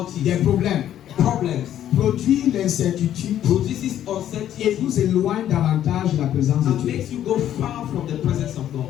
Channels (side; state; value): right; quieter; 11.2 dB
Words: des problèmes problems, produit l'incertitude produces et uncertainty vous éloigne davantage de la présence de and Dieu. makes you go far from the presence of God.